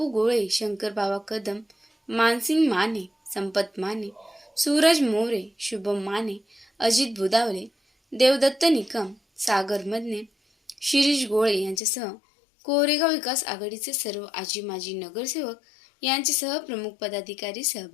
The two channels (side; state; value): right; drops out; at 11.8 s